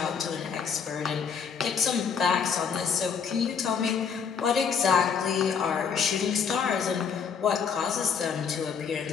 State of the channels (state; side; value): quieter; right; 6.6 dB